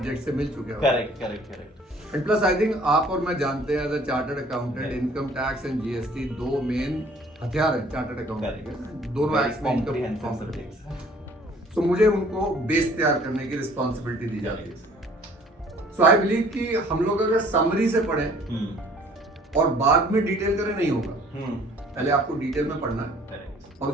से मिल चुके हो। Correct. And plus I think आप और मैं जानते हैं as a chartered accountant, income tax and GST 2 main हथियार है चार्टर्ड अकाउंटेंट के, दोनों एक्ट्स में इनकम सब्जेक्ट्स। सो मुझे उनको बेस तैयार करने की रिस्पांसिबिलिटी दी जाती है। सो आई बिलीव कि हम लोग अगर समरी से पढ़ें और बाद में डिटेल करें नहीं होगा, पहले आपको डिटेल में पढ़ना है और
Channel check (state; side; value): normal; both; correlation 0.55